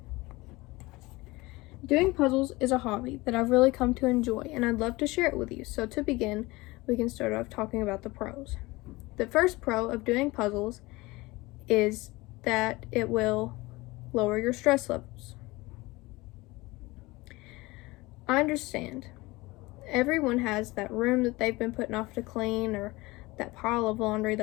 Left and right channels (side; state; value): right; quieter; 21.6 dB